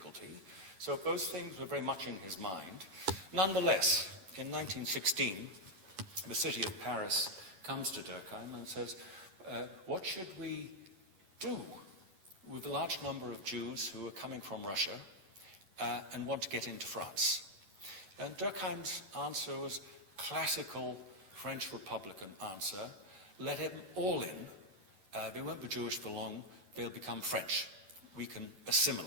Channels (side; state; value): left; late; 11 ms